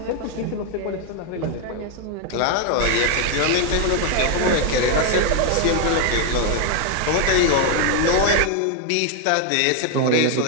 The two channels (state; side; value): different; both; correlation 0.01